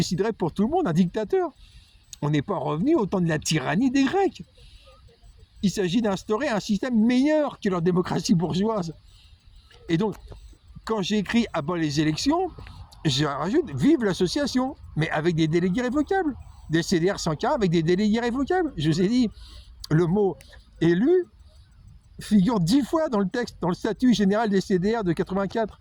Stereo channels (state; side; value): identical; both; correlation 1.00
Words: pour tout le monde, un dictateur. On n'est pas revenu au temps de la tyrannie des Grecs. Il s'agit d'instaurer un système meilleur que leur démocratie bourgeoise. Et donc, quand j'écris « à bas les élections », je rajoute « vive l'association », mais avec des délégués révocables. Des CDR sans cas avec des délégués révocables. Je vous ai dit, le mot « élu » figure 10 fois dans le texte, dans le statut général des CDR de 84.